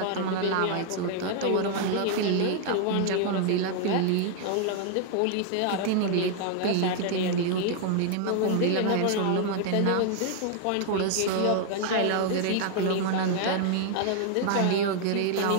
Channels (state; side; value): different; both; correlation 0.00